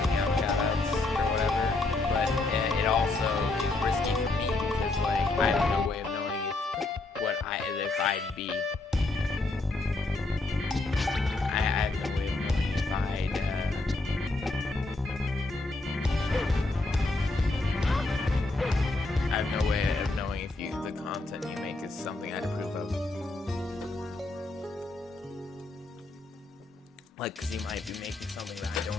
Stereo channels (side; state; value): right; quieter; 3.1 dB